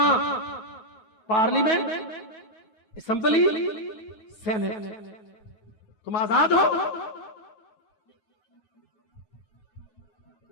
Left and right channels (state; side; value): late; right; 9.6 ms